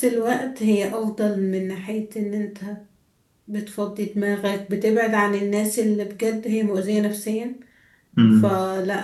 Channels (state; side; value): identical; both; correlation 1.00